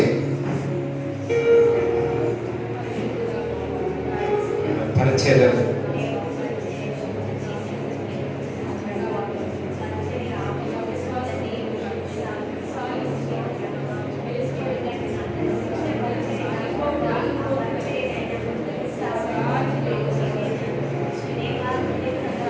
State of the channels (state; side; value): identical; both; correlation 1.00